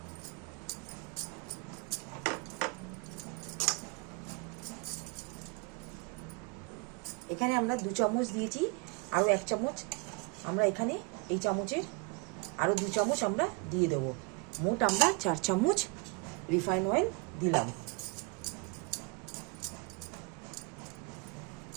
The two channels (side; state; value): left; quieter; 28.1 dB